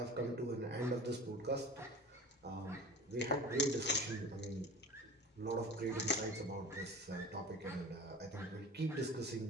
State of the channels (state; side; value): normal; both; correlation 0.37